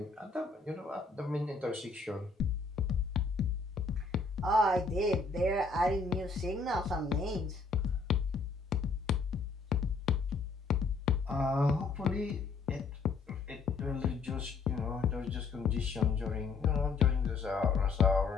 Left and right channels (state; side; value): quieter; right; 4.4 dB